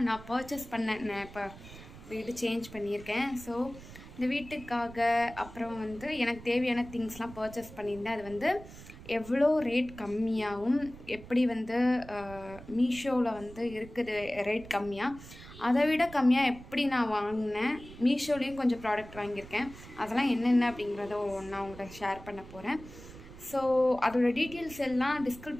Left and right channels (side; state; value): right; noise; rumble, 16 dB below the sound